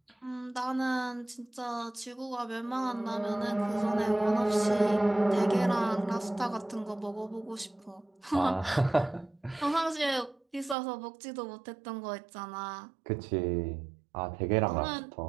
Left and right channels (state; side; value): drops out; left; at 10.8 s